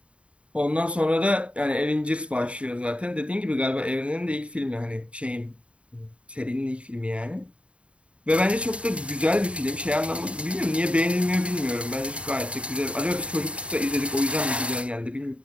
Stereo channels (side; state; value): left; late; 0.061 ms